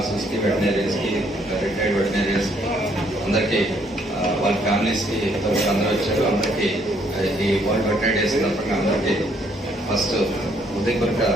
కి, వెటనరీస్ కి, రిటైర్డ్ వెటనరీస్ కి అందరికి, వాళ్ళ ఫ్యామిలీస్ కి అందరూ వచ్చారు. అందరికి ఈ వరల్డ్ వెటనరీ డే సందర్భంగా అందరికి ఫస్ట్ హృదయపూర్వక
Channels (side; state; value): both; normal; correlation 0.68